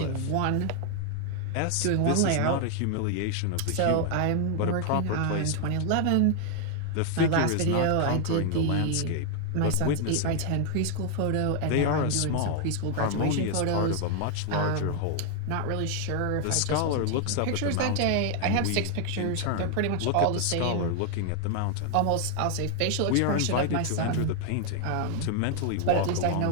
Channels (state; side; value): different; both; correlation 0.00